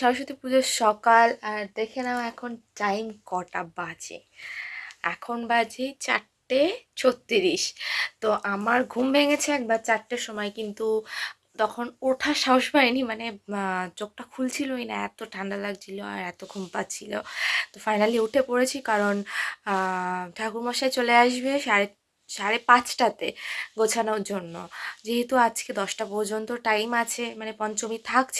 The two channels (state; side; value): identical; both; correlation 1.00